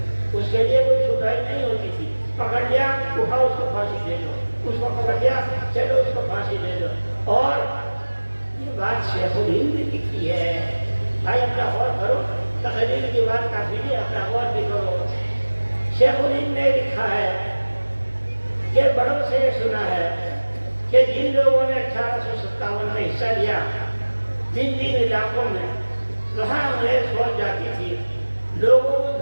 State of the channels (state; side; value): inverted; both; correlation -1.00